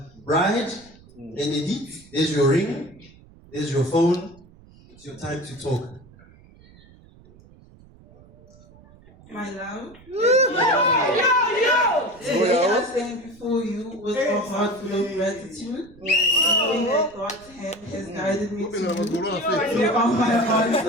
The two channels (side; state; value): right; noise; rumble, 25 dB below the sound